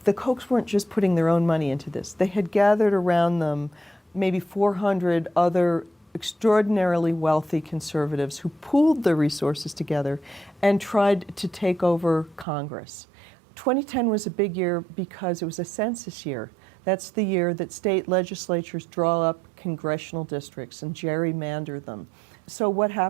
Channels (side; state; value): left; drops out; at 12.5 s